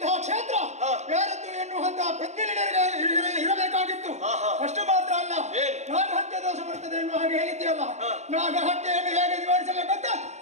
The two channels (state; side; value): late; left; 0.33 ms